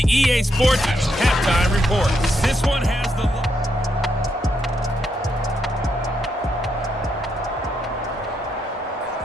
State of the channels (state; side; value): normal; both; correlation 0.79